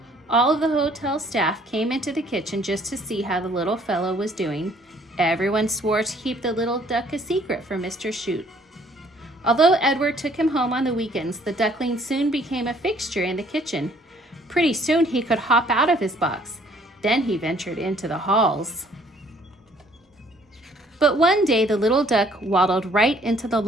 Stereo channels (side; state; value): both; normal; correlation 0.61